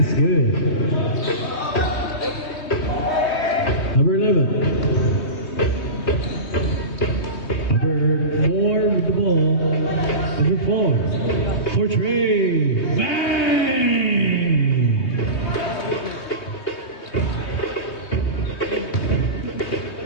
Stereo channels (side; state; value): right; late; 3.2 ms